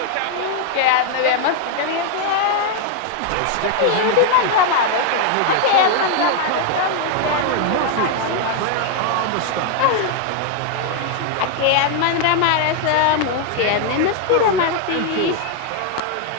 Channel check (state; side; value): different; both; correlation 0.00